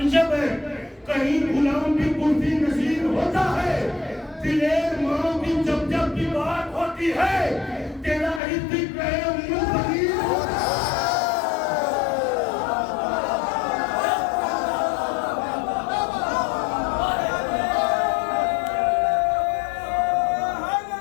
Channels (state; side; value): drops out; right; at 8.4 s